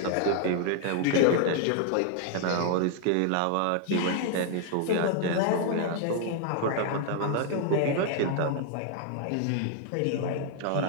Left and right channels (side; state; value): both; different; correlation 0.00